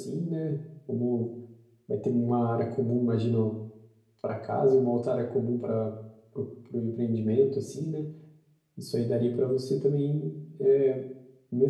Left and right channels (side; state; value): both; identical; correlation 1.00